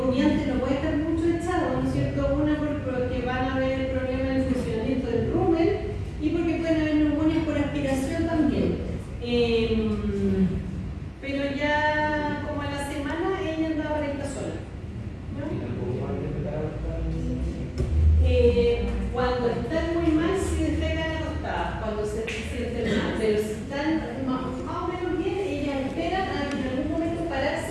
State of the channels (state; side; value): identical; both; correlation 1.00